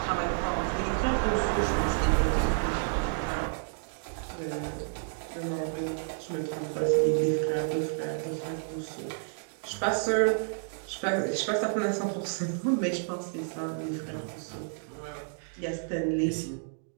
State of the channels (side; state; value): left; silent; digital silence